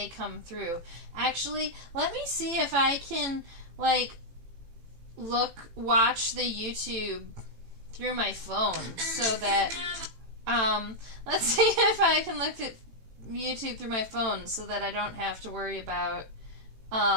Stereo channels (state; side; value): late; left; 18 ms